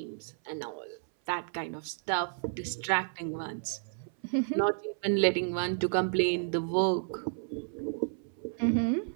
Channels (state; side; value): silent; left; 57 dB below the other